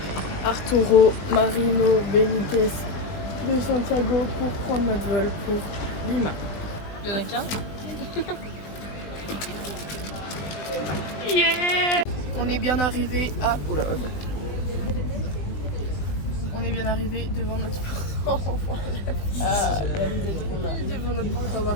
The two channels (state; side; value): late; right; 20 ms